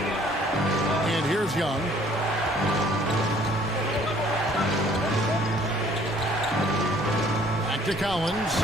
And here's Young. Back to Collins.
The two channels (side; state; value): both; normal; correlation 0.58